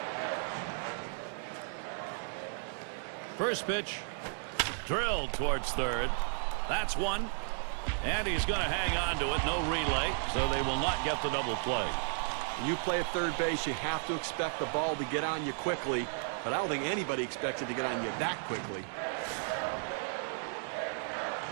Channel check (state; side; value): silent; left; 55 dB below the other